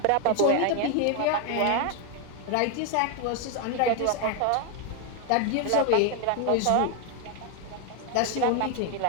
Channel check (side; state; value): both; different; correlation 0.01